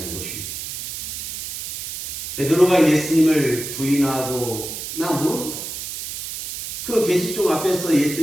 것입니다. 베드로가 예수님을 부인하고 나 모른다. 그 계시종 앞에서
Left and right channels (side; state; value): right; noise; hiss, 7 dB below the sound